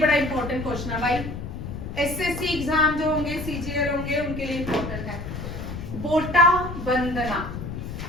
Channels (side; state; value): left; noise; rumble, 7 dB below the sound